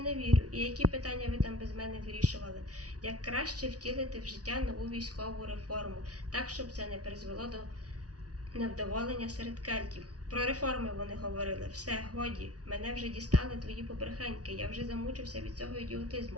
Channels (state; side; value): late; left; 0.68 ms